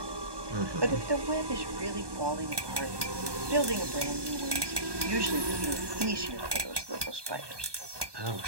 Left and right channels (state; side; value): late; left; 1.2 ms